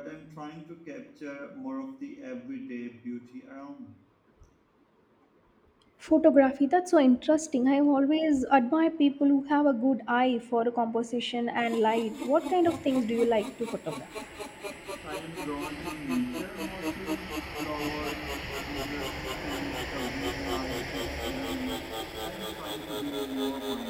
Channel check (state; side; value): identical; both; correlation 1.00